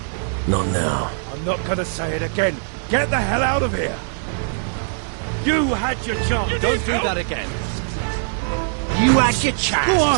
Not now. I'm not gonna say it again. Get the hell out of here! You had your chance! Don't do that again! You had your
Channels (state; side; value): silent; left; 65 dB below the other